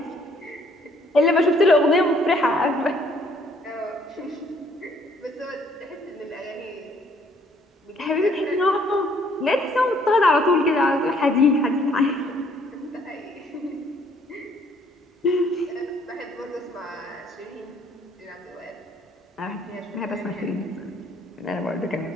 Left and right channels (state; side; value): normal; both; correlation 0.63